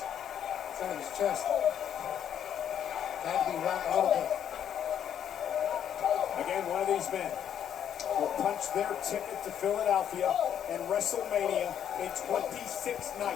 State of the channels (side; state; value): right; quieter; 9.4 dB